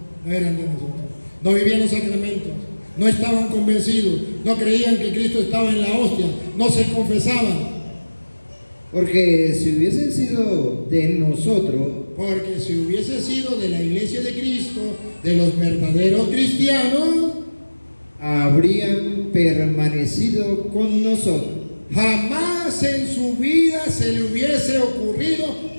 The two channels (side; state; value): both; inverted; correlation -1.00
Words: no eran de nosotros. No vivían los sacramentos, no estaban convencidos, no creían que Cristo estaba en la hostia, no se confesaban. Porque si hubiesen sido de nosotros, Porque si hubiese sido de la iglesia de Cristo, de los verdaderos cristianos, habrían permanecido con nosotros. jamás en su vida se le hubiese ocurrido